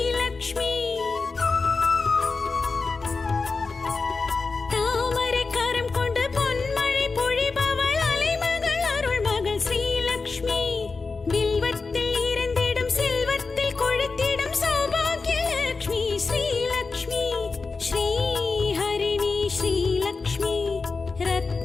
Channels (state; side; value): quieter; right; 4.2 dB